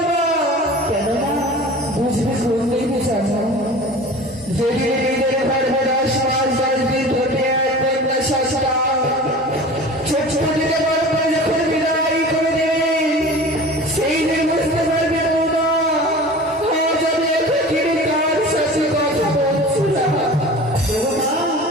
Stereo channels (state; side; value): normal; both; correlation 0.38